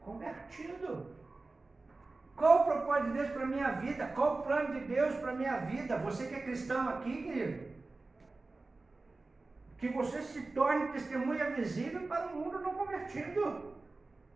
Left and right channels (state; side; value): quieter; left; 3.4 dB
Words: convertido. Qual o propósito de Deus para a minha vida? Qual o plano de Deus para a minha vida? Você que é cristão aqui, querido, que você se torne testemunha visível para o mundo não convertido.